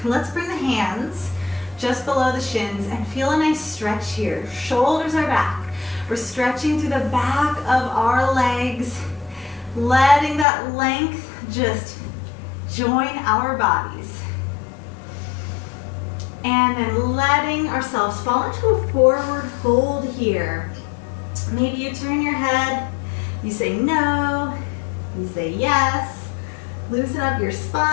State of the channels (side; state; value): right; drops out; at 10.5 s